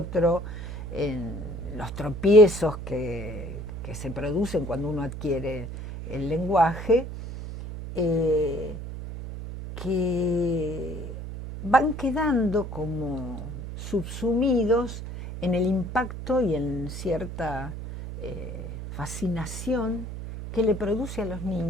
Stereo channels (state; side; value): noise; right; hum, 8 dB below the sound